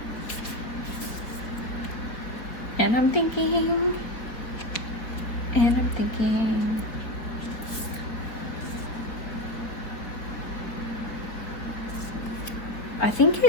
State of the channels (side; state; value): right; late; 4.6 ms